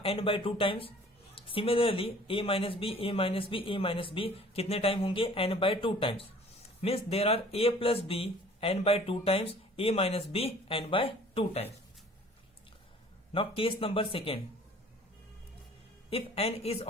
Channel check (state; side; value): normal; both; correlation 0.51